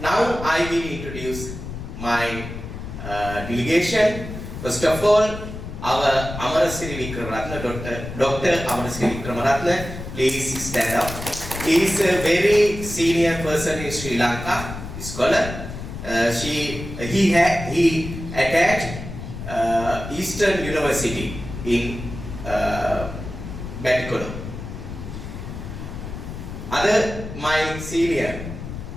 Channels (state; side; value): noise; left; rumble, 9 dB below the sound